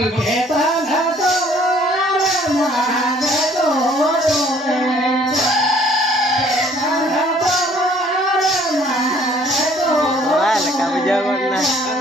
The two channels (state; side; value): normal; both; correlation 0.58